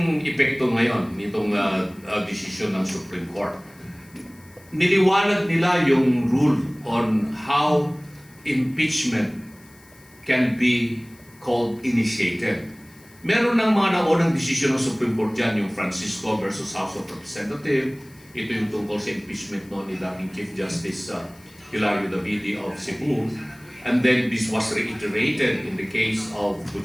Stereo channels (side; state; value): left; noise; hiss, 27 dB below the sound